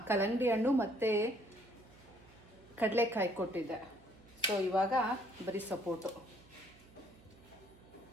ಕಲ್ಲಂಗಡಿ ಹಣ್ಣು ಮತ್ತು ಕಡಲೆಕಾಯಿ ಕೊಟ್ಟಿದ್ದೆ. ಸೊ ಇವಾಗ ಬರೀ ಸಪೋಟೊ.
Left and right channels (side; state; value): right; noise; hum, 24 dB below the sound